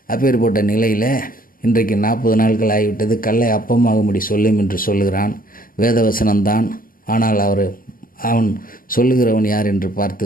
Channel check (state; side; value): late; right; 0.41 ms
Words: அப்பேற்பட்ட நிலையில் இன்றைக்கு 40 நாட்கள் ஆகிவிட்டது, கல்லை அப்பமாகும்படி சொல்லும் என்று சொல்லுகிறான். வேதவசனம்தான். ஆனால் அவன் சொல்லுகிறவன் யார் என்று